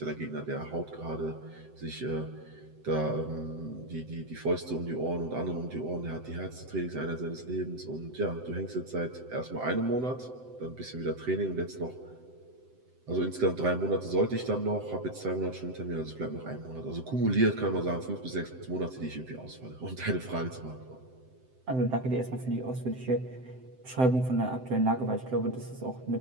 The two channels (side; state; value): left; late; 7.8 ms